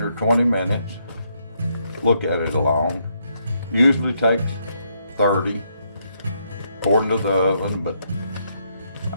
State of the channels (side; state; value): both; inverted; correlation -0.76